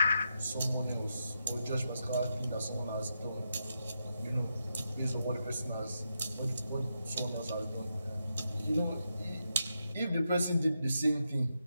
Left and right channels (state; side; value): inverted; both; correlation -0.84